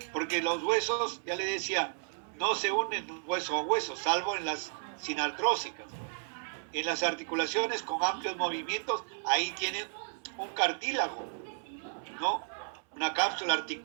porque los huesos, ya le decía, no se unen hueso a hueso, salvo en las sinartrósicas. En las articulaciones con amplios movimientos, ahí tienen un cartílago, ¿no? Una cápsula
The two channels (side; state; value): left; silent; 56 dB below the other